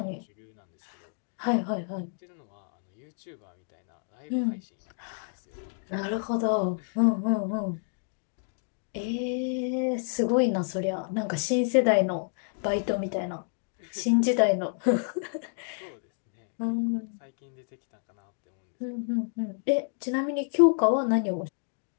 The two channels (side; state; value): right; silent; digital silence